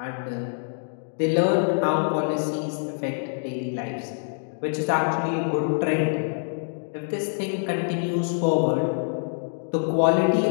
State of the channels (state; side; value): silent; right; digital silence